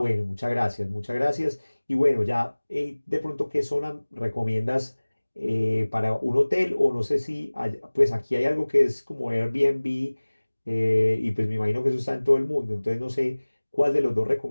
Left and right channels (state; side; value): inverted; both; correlation -1.00